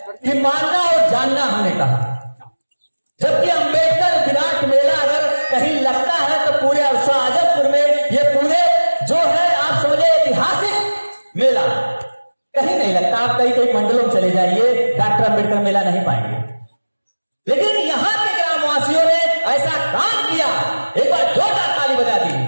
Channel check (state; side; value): inverted; both; correlation -1.00